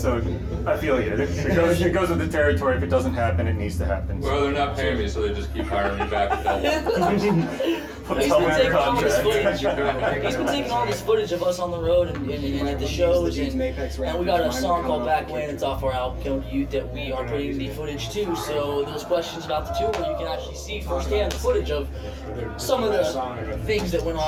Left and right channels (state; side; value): identical; both; correlation 1.00